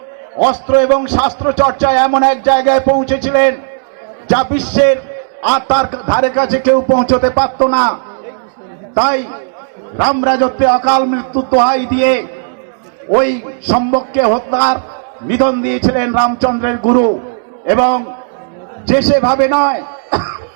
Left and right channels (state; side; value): silent; left; digital silence